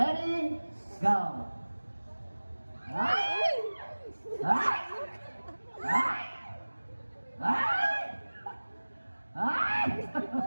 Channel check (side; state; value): both; inverted; correlation -1.00